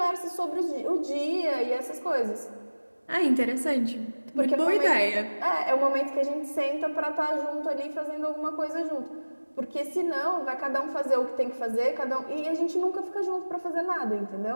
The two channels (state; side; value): inverted; both; correlation -1.00